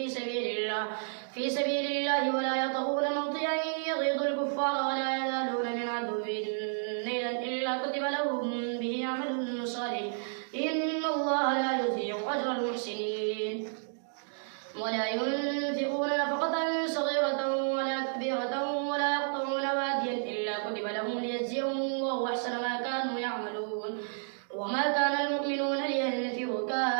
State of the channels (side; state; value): left; silent; digital silence